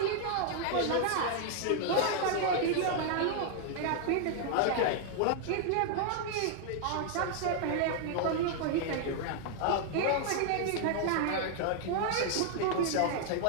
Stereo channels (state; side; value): different; both; correlation 0.00